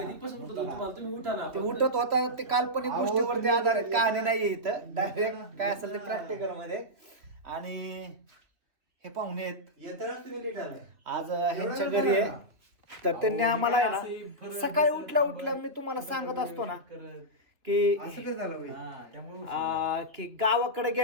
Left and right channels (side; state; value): left; late; 3.3 ms